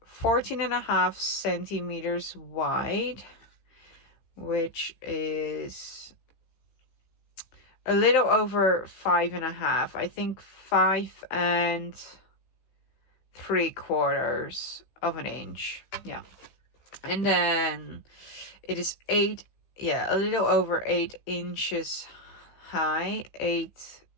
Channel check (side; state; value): right; late; 16 ms